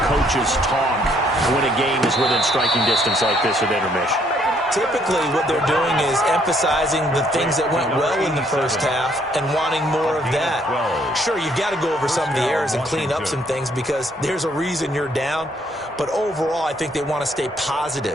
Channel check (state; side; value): normal; both; correlation 0.67